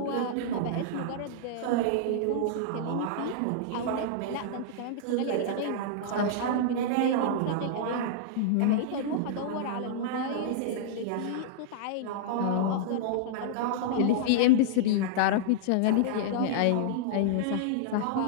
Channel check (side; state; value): both; different; correlation -0.02